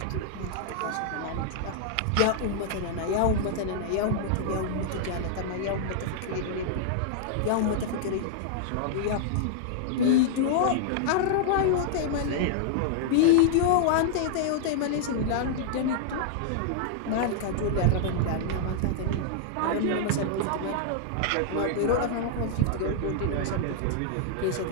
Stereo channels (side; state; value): both; different; correlation -0.01